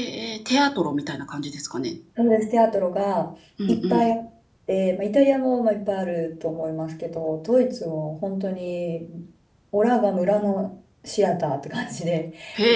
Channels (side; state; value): both; identical; correlation 1.00